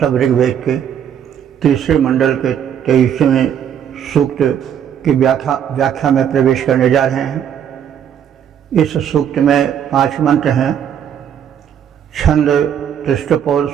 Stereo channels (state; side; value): quieter; left; 9.0 dB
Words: सब ऋग्वेद के तीसरे मंडल के 23वें सूक्त की व्याख्या में प्रवेश करने जा रहे हैं। इस सूक्त में 5 मंत्र हैं। छंद तृष्टपौर